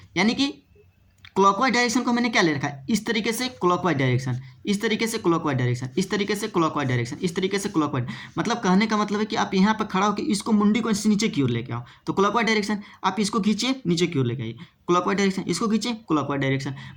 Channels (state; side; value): identical; both; correlation 1.00